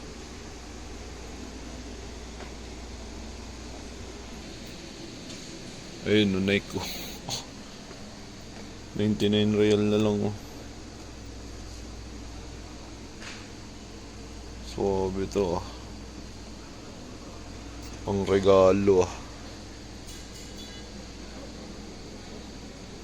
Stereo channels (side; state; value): both; identical; correlation 1.00